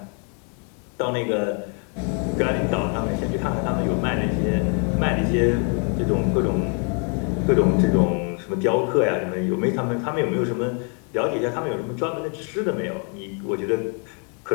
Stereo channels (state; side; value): quieter; right; 39.5 dB